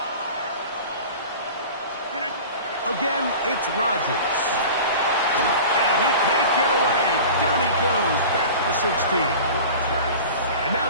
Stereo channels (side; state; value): both; inverted; correlation -0.37